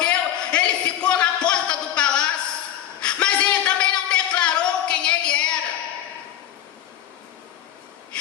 ele ficou na porta do palácio, mas ele também não declarou quem ele era.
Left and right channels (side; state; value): right; quieter; 11.3 dB